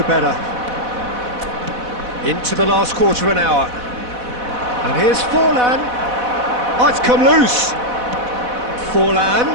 better. Into the last quarter of an hour. And here's Forlan. Oh, it's come loose. Forlan.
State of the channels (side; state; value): left; late; 4.1 ms